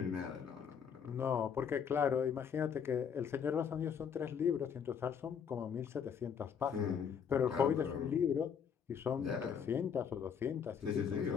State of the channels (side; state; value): right; quieter; 7.3 dB